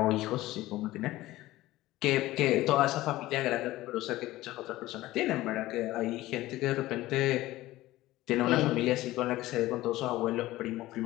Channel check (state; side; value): quieter; right; 16.9 dB